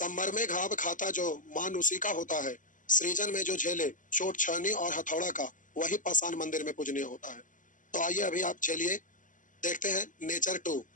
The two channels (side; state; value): right; late; 0.38 ms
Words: में घाव खाता जो मान उसी का होता है, सृजन में जो झेले चोट छानी और हथौड़ा का, वही पाषाण मंदिर में पूजनीय होता है। तो आइए अभी आप चलिए देखते हैं नेचर टू।